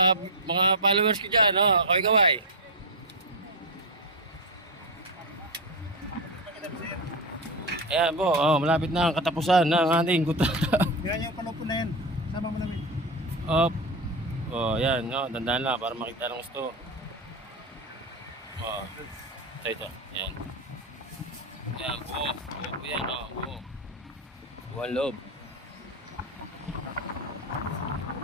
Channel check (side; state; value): both; normal; correlation 0.12